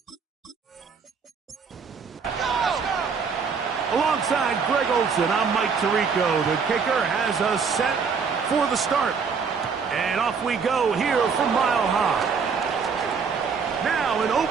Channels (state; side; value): quieter; left; 5.7 dB